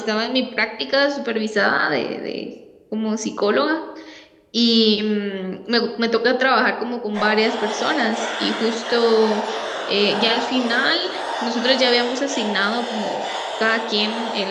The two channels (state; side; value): identical; both; correlation 1.00